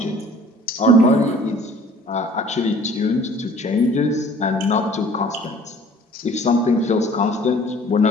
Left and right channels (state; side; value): normal; both; correlation 0.51